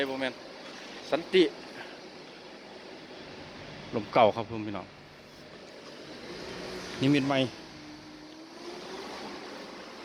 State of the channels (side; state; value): both; identical; correlation 1.00